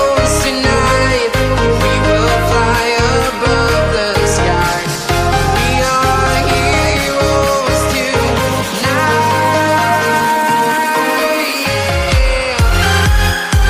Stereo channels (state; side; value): identical; both; correlation 1.00